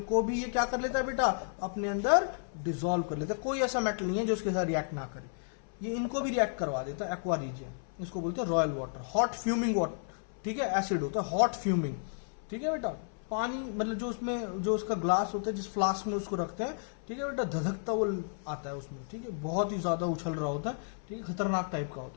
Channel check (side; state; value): right; silent; 56 dB below the other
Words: को भी ये क्या कर लेता है बेटा, अपने अंदर डिसॉल्व कर लेता है। कोई ऐसा मेटल नहीं है जो उसके साथ रिएक्ट ना करे, ये इनको भी रिएक्ट करवा देता है, एक्वा रीजियन। इसको बोलते हैं royal water, hot fuming water, ठीक है, एसिड होता है हॉट फ्यूमिंग, ठीक है बेटा। पानी मतलब जो उसमें जो उसका ग्लास होता है, जिस फ्लास्क में उसको रखते हैं, ठीक है बेटा, धधकता वो आता है उसमें, ठीक है, बहुत ही ज्यादा उछल रहा होता है, ठीक है, खतरनाक टाइप का